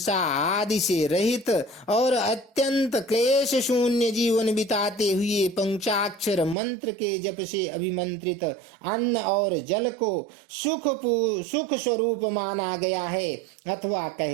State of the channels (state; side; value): drops out; left; at 6.6 s